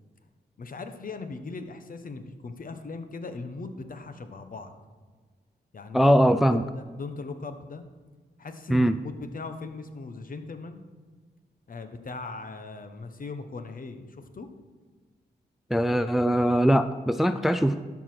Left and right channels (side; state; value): both; normal; correlation 0.93